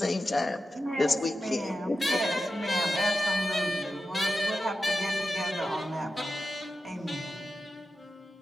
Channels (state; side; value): normal; both; correlation 0.91